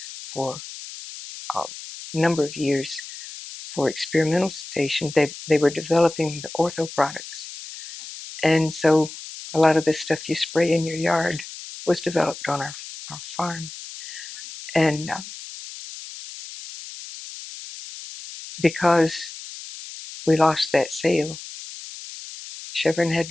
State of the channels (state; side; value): noise; left; hiss, 12 dB below the sound